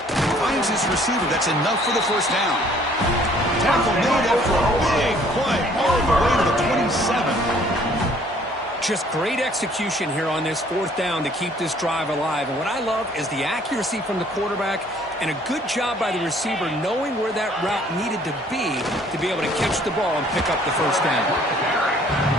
Finds his receiver. That's enough for the first down. Tackle made after a big play all the way to the 27. Just great execution here on this fourth down to keep this drive alive. And what I love is the accuracy from the quarterback and a good job by the receiver knowing where that route needed to be able to catch the ball and pick up the first down.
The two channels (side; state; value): both; normal; correlation 0.59